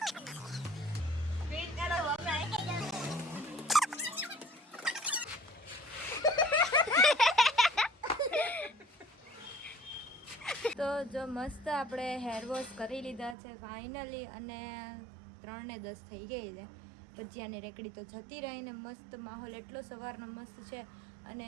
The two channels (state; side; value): drops out; left; at 13.4 s